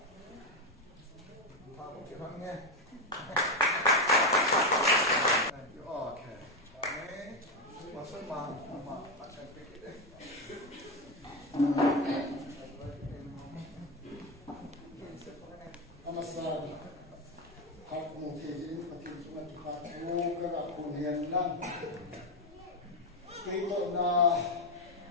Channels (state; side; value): noise; left; rumble, 26 dB below the sound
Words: pa ko ke bang ne thank you okay amen pastor ma asan pe ke Namaskar. Hak mungkin patin sungai tuhan tu kerana kuliah nan. Kita na